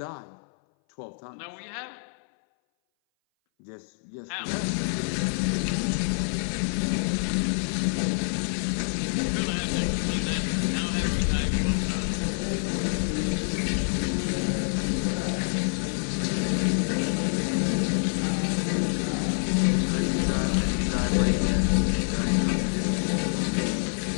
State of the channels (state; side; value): silent; right; 59 dB below the other